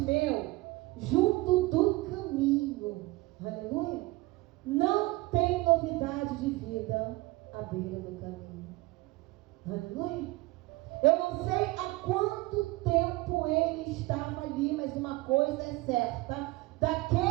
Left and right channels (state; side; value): quieter; left; 21.0 dB